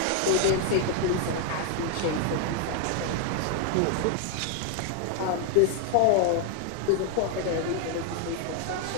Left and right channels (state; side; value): different; both; correlation 0.01